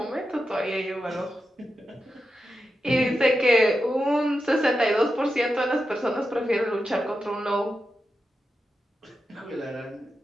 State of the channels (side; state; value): both; normal; correlation 0.89